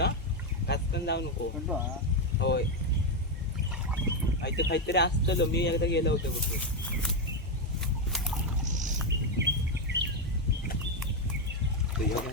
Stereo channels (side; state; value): both; normal; correlation 0.06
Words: काचकन जाऊ नको. होय काहीतरी असतं मी एकदा गेलो होतो कुठे.